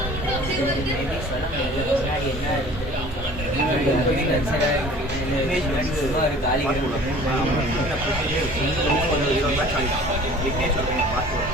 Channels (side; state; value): both; normal; correlation 0.47